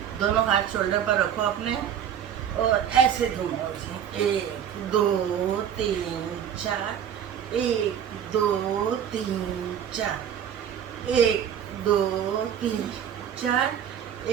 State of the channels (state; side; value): quieter; left; 9.0 dB